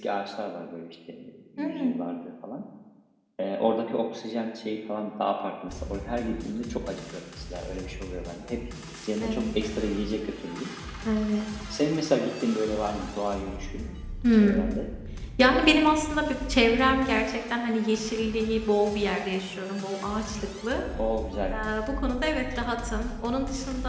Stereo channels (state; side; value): identical; both; correlation 1.00